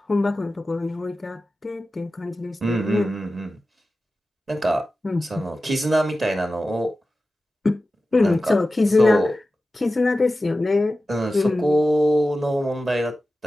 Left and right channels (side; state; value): both; normal; correlation 0.94